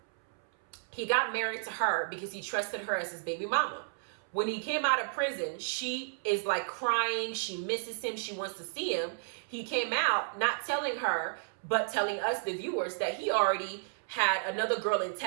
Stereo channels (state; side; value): silent; left; 56 dB below the other